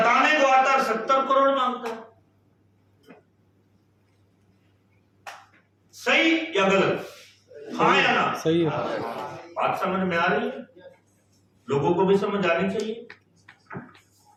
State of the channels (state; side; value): identical; both; correlation 1.00